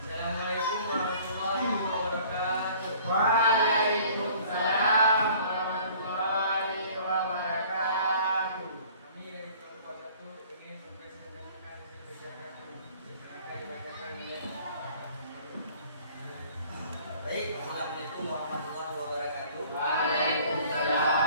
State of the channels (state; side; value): inverted; both; correlation -0.52